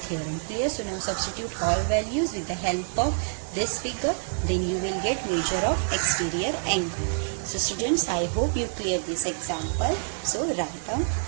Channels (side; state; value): left; silent; digital silence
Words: Clear? So now substitute all values with the help of this figure, then you will get measure of exterior angle. So students, I hope you clear this example. So write down